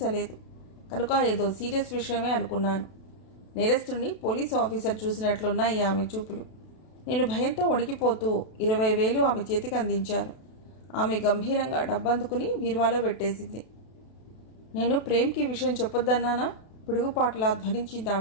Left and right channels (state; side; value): late; right; 32 ms